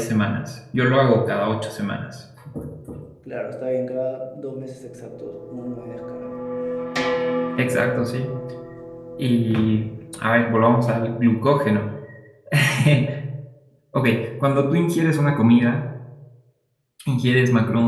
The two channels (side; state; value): both; identical; correlation 1.00